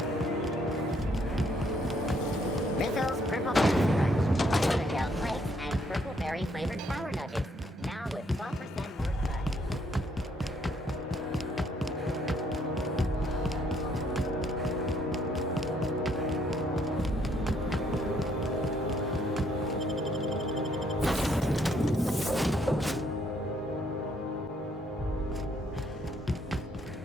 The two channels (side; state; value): both; normal; correlation 0.69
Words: Rizzo's Purple Crunch, Gel Flakes, and Purple Berry flavored Power Nuggets. Now with 12% more crunch.